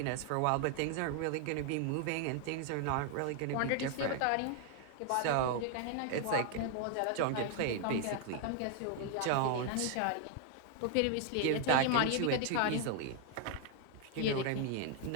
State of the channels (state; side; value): different; both; correlation 0.00